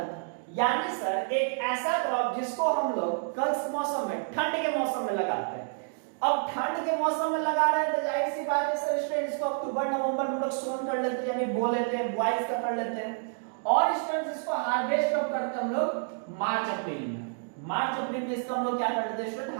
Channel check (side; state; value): left; silent; digital silence